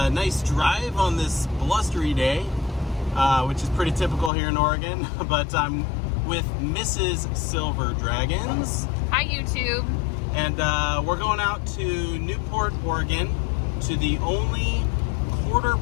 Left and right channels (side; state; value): right; drops out; at 4.3 s